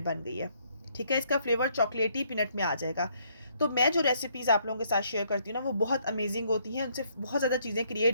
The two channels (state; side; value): inverted; both; correlation -0.69